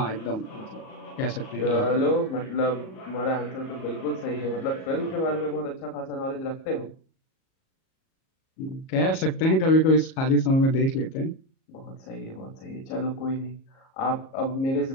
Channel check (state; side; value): late; right; 37 ms